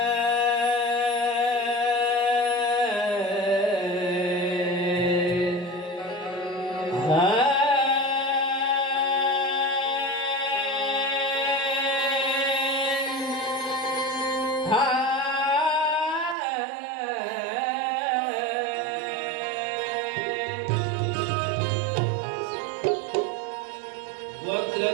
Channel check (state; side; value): drops out; left; at 16.4 s